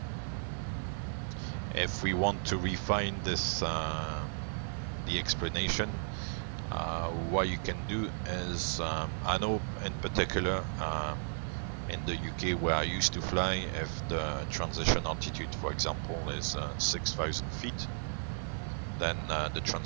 If we want to refine this, the explanation, what you can do is, I know in particular in the UK where I used to fly, if the transition altitude, for example, is 6,000 feet, then the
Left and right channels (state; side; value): silent; left; digital silence